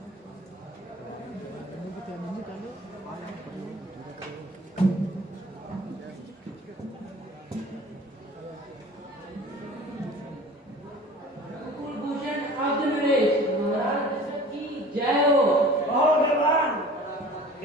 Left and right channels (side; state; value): both; normal; correlation 0.44